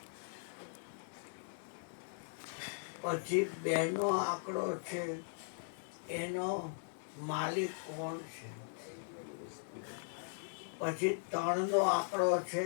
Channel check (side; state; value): right; silent; digital silence